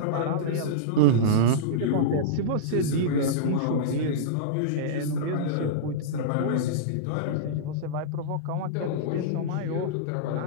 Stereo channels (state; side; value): different; both; correlation -0.04